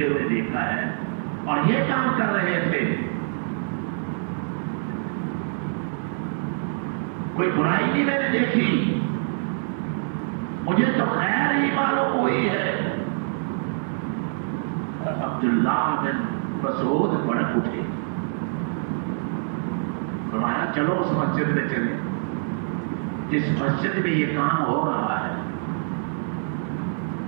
ہوئے دیکھا ہے اور یہ کام کر رہے تھے. کوئی برائی نہیں میں نے دیکھی، مجھے تو خیر ہی معلوم ہوئی ہے. عبداللہ بن مسعود بھڑک اٹھے، فرمایا چلو اس مسجد میں چلے جس مسجد میں یہ کام ہو رہا ہے.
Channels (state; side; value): silent; left; digital silence